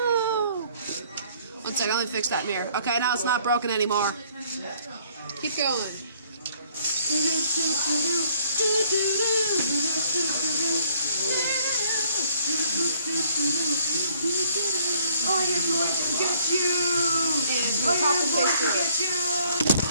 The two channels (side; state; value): both; inverted; correlation -0.61